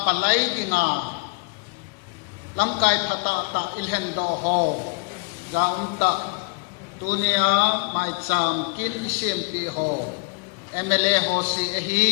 palai dinga lamkai thata ta ilhen do ho zaunta tunia Maicham Sempeh ho MLA ho si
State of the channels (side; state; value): right; quieter; 32.5 dB